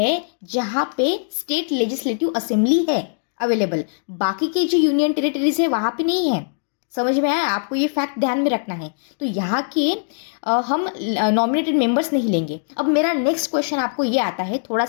जहाँ पे स्टेट लेजिस्लेटिव असेंबली है अवेलेबल। बाकी के जो यूनियन टेरिटरीज है वहाँ पे नहीं है। समझ में आया? आपको ये फैक्ट ध्यान में रखना है। तो यहाँ के हम नॉमिनेटेड मेंबर्स नहीं लेंगे। अब मेरा नेक्स्ट क्वेश्चन आपको ये आता है, थोड़ा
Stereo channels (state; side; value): silent; right; digital silence